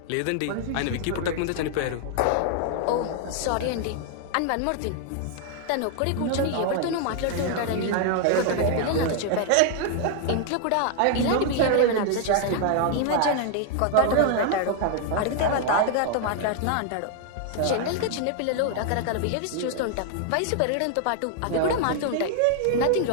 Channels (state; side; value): different; both; correlation 0.00